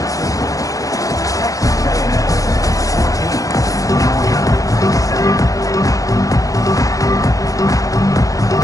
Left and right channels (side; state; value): right; late; 0.17 ms